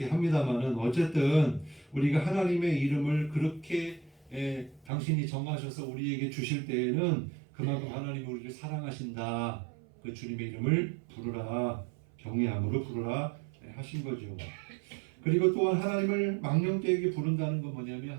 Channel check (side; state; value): left; drops out; at 4.9 s